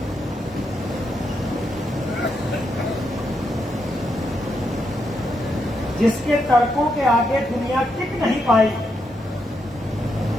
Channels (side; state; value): both; normal; correlation 0.81